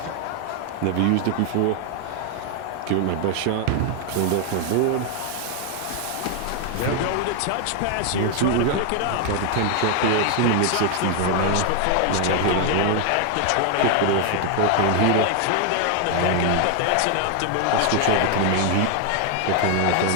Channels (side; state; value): both; different; correlation 0.00